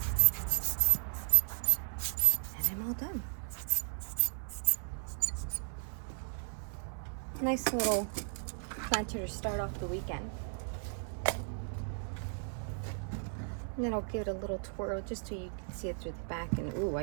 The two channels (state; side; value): silent; left; digital silence